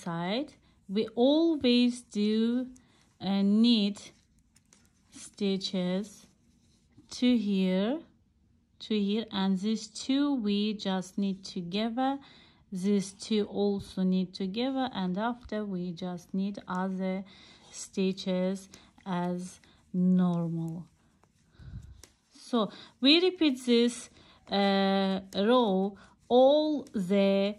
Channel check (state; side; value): identical; both; correlation 1.00